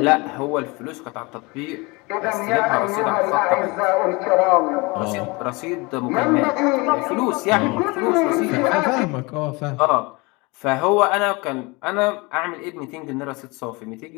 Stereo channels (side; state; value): right; quieter; 26.0 dB